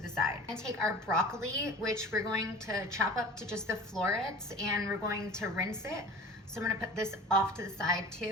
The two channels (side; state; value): both; normal; correlation 0.39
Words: side. And take our broccoli, which we're going to chop up to just the florets, and we're going to rinse it. So I'm gonna put this off to the side